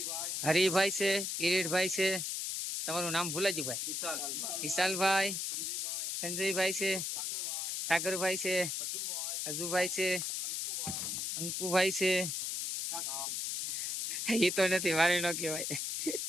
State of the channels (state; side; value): noise; left; hiss, 2 dB below the sound